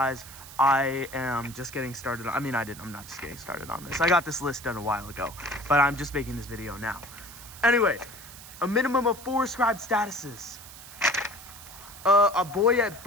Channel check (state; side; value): noise; right; hiss, 16 dB below the sound